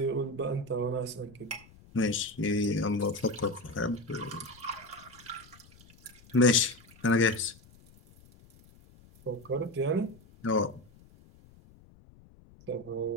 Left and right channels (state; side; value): noise; left; rumble, 25 dB below the sound